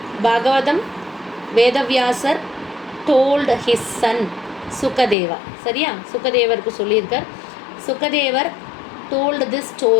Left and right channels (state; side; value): drops out; right; at 5.2 s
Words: பாகவதம் வேதவியாசர் told his son சுகதேவா. சரியா? சுகதேவருக்கு சொல்லியிருக்கார். சுகதேவர் told this